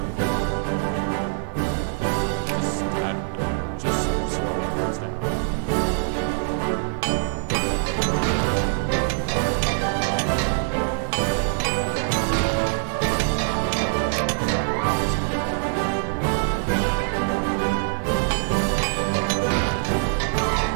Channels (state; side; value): silent; left; digital silence